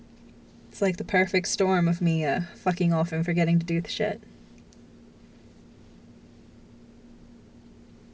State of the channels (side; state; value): both; identical; correlation 1.00